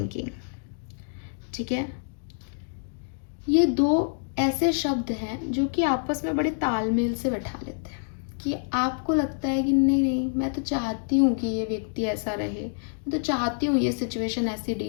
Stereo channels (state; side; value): silent; right; digital silence